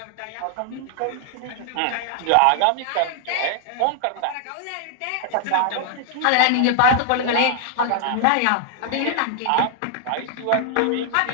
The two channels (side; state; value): both; different; correlation 0.00